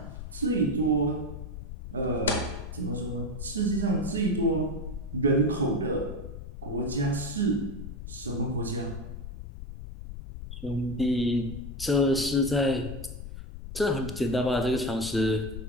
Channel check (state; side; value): noise; left; rumble, 9 dB below the sound